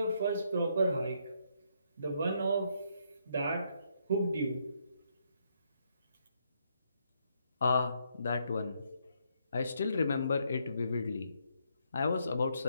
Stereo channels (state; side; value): inverted; both; correlation -0.75